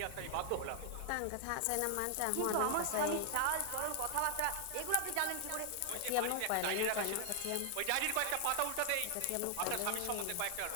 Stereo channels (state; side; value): different; both; correlation 0.00